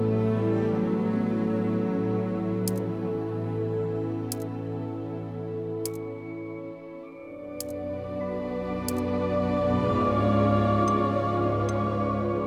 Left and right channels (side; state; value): both; identical; correlation 1.00